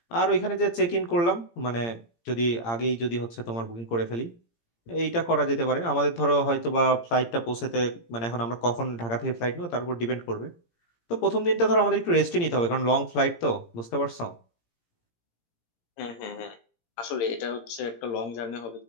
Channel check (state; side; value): late; right; 17 ms